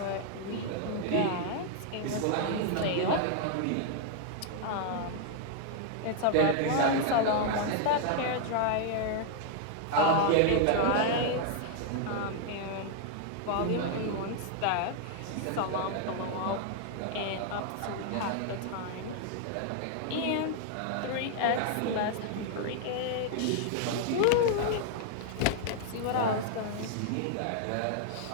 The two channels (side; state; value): both; different; correlation 0.00